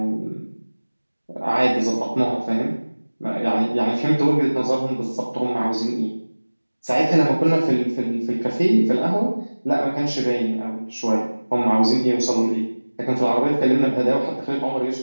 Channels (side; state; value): both; inverted; correlation -1.00